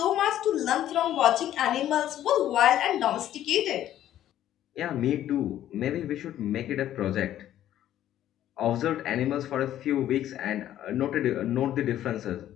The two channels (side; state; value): right; quieter; 12.1 dB